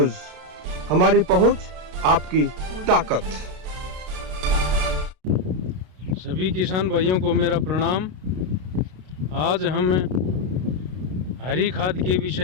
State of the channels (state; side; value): late; left; 32 ms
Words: हमारी पहुंच आपकी ताकत। सभी किसान भाइयों को मेरा प्रणाम। आज हम हरी खाद के